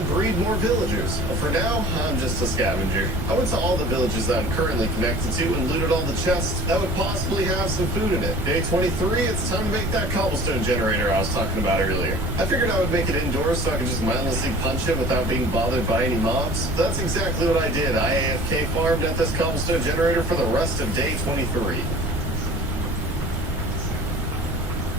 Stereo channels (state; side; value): noise; right; rumble, 4 dB below the sound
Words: breed more villagers. But for now, I'm just a scavenger. I went to all the villages that I'm currently connected to and looted all the chests that would possibly have some food in it. Day 23, it's time to make that cobblestone generator I was talking about earlier. I figured I would make it indoors so I could just mindlessly punch it without being bothered by any mobs. So that's exactly what I did. I AFK farmed at this cobblestone generator for the rest of day 23.